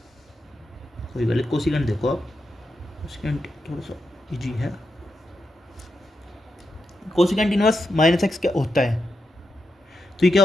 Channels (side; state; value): both; normal; correlation 0.86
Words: कोई पहले कोसिकेंट देखो आप, कोसिकेंट थोड़ा सा इजी है। कोसिकेंट इनवर्स -x क्या होता है? तो ये क्या